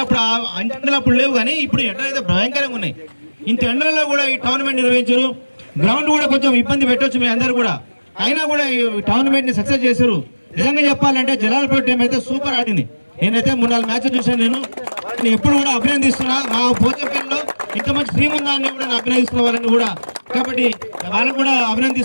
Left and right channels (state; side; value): inverted; both; correlation -1.00